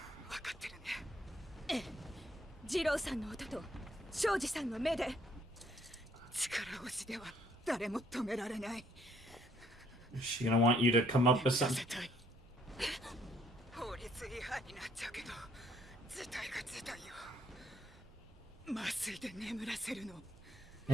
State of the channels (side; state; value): both; normal; correlation 0.66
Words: 分かってるね。ええ、二郎さんの音と庄司さんの目で力押しでは誰も止められない。 Is she gonna want you to come up with something? 法律違反になっちゃうけど、事態が事態よ。麻酔で眠らせるの。